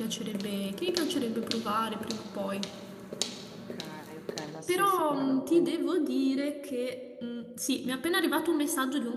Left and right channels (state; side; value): identical; both; correlation 1.00